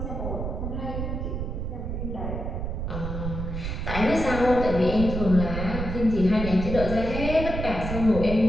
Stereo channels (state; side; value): noise; right; rumble, 4 dB below the sound